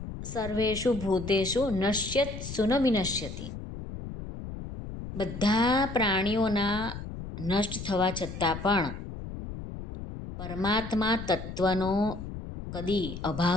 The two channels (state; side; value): noise; left; rumble, 9 dB below the sound